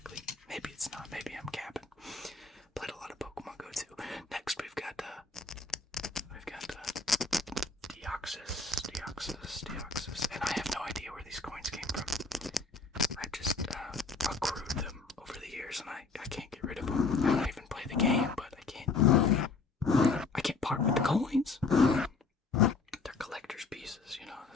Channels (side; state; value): right; quieter; 4.1 dB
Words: Maybe it's not. Maybe I'm capping. Played a lot of Pokemon Go too. Next we've got Deoxys, and I have no idea where these coins came from. I just accrued them over the years, and I can't get rid of them. I don't even play the game, but I can't part with the coins. They're collector's pieces, you know,